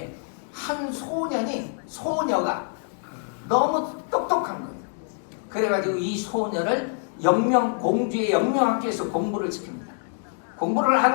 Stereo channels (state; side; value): silent; right; 56 dB below the other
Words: 한 소녀가 너무 똑똑한 거예요. 그래가지고 이 소녀를 공주의 영명학교에서 공부를 시킵니다. 공부를